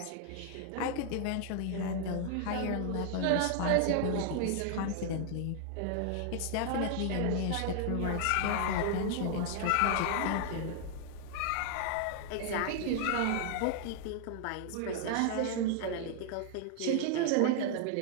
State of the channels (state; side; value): different; both; correlation 0.00